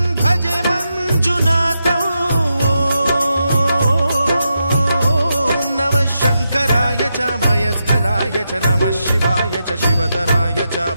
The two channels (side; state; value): both; inverted; correlation -0.85